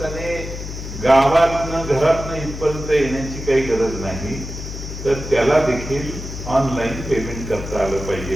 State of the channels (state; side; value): noise; left; hum, 8 dB below the sound